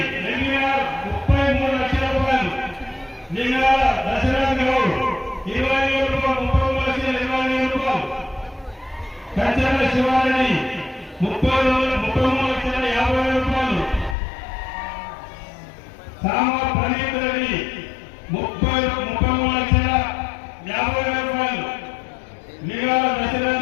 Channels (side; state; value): right; drops out; at 14.2 s